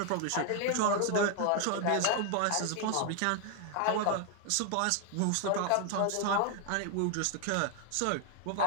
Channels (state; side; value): different; both; correlation 0.00